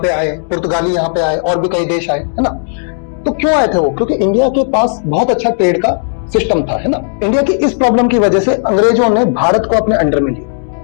आए, पुर्तगाली यहाँ पे आए, और भी कई देश आए, है ना। तो क्यों आए थे वो? क्योंकि इंडिया के पास बहुत अच्छा ट्रेड का सिस्टम था, है ना। इंडिया की इस प्रॉब्लम की वजह से अंग्रेजों ने भारत को अपने अंडर में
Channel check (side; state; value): right; silent; digital silence